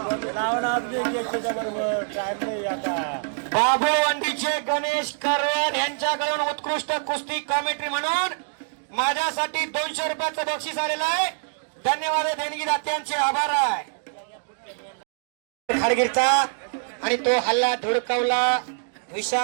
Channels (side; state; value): left; silent; digital silence